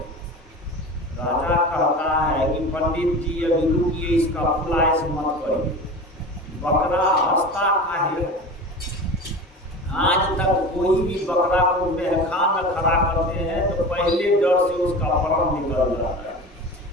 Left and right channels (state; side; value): normal; both; correlation 0.32